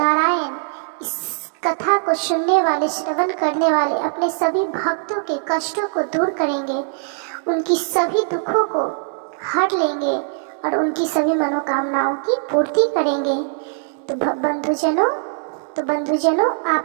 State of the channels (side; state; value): left; silent; digital silence